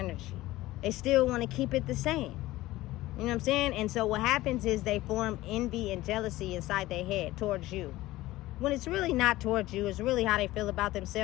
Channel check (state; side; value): quieter; right; 17.3 dB